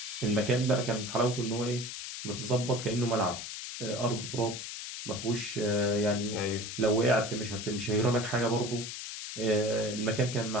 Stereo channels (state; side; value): noise; left; hiss, 7 dB below the sound